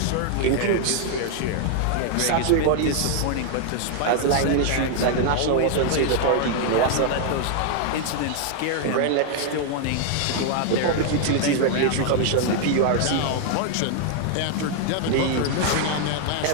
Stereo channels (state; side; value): different; both; correlation 0.00